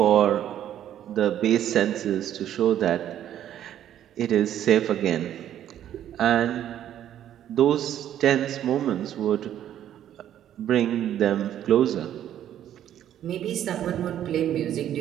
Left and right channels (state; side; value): quieter; left; 11.0 dB